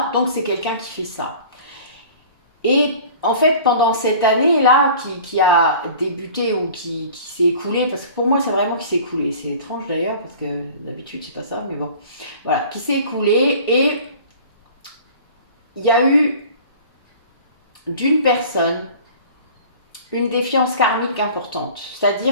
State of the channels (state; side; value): inverted; both; correlation -0.44